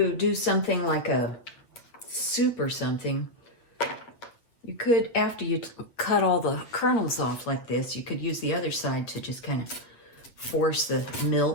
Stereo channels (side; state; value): right; late; 8.4 ms